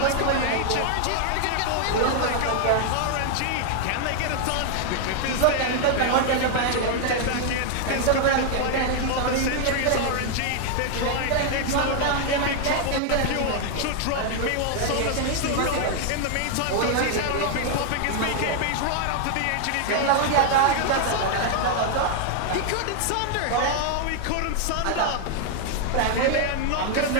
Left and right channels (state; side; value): different; both; correlation 0.00